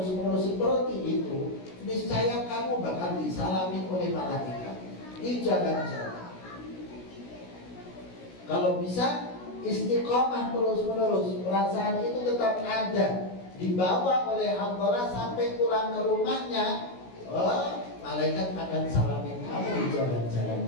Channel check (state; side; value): late; right; 16 ms